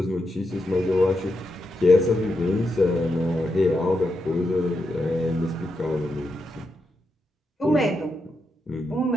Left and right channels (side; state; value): both; normal; correlation 0.85